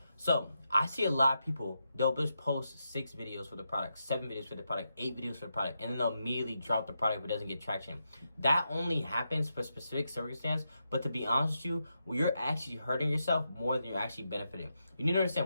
so, I see a lot of people, they'll just post 6 videos for the product, 7 videos for the product, 8 videos for the product, and then they'll immediately drop the product if it doesn't get traction. That only happens for specific circumstance, but to be honest with you, you're actually hurting yourself more than you're actually benefiting. You need to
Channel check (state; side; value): inverted; both; correlation -0.85